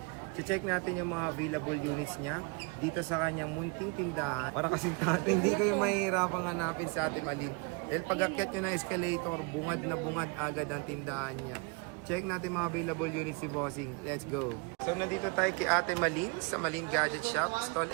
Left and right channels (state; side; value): quieter; left; 31.4 dB